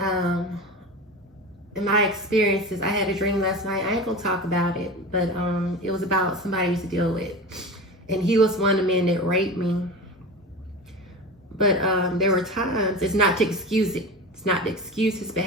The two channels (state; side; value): normal; both; correlation 0.29